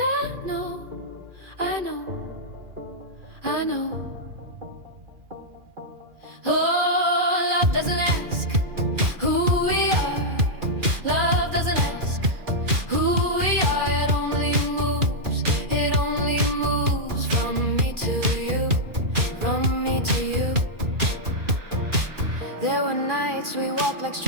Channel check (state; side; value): late; left; 2.4 ms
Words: know, I know, I know. Oh, love doesn't ask who we are. Love doesn't ask who we are. It only moves from me to you, from me to you. There were nights we walked like